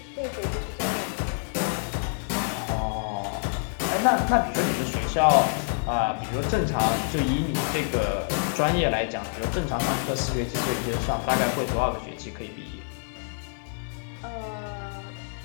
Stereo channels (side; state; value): right; silent; 60 dB below the other